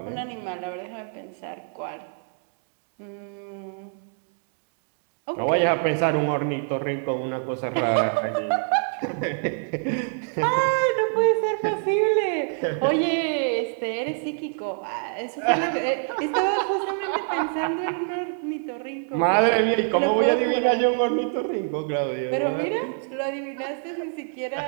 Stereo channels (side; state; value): left; silent; 61 dB below the other